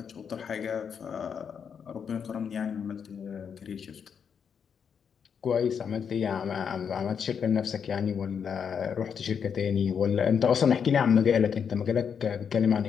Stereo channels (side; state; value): right; quieter; 7.1 dB